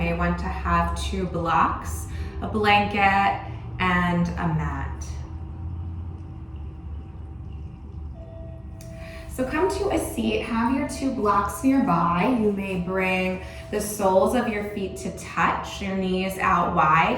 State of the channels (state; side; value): identical; both; correlation 1.00